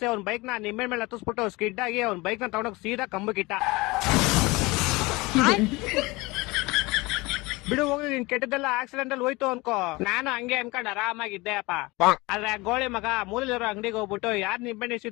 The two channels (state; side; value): quieter; right; 23.1 dB